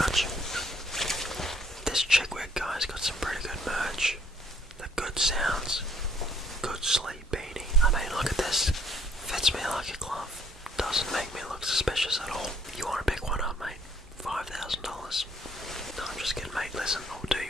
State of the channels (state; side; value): normal; both; correlation 0.64